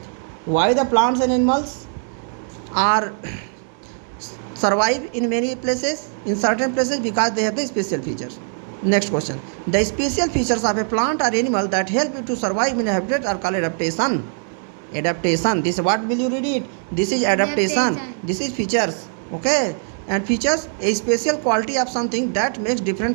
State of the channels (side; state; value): left; silent; 58 dB below the other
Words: why the plants and animals are survive in many places, in certain places, because they have the special features. Next question. The special features of a plant or animal that help it to survive in a habitat are called adaptation. Adaptation. This, what will you read it? This is adaptation. This is features. Okay. And features, a special quality of something that makes